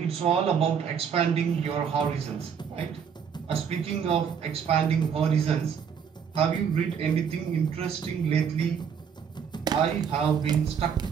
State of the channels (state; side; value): quieter; left; 7.2 dB